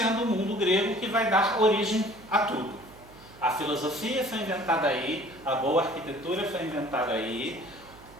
o mundo grego que vai dar origem a tudo. A filosofia foi inventada aí, a boa arquitetura foi inventada aí,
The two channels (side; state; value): right; noise; hum, 23 dB below the sound